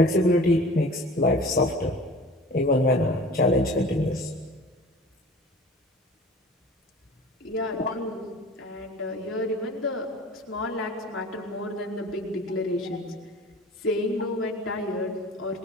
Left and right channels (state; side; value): normal; both; correlation 0.42